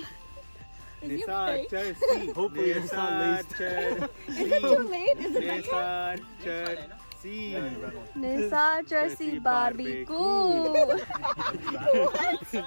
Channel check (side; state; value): both; inverted; correlation -1.00